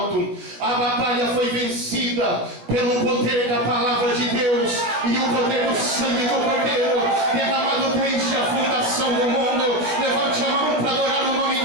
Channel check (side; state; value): left; late; 16 ms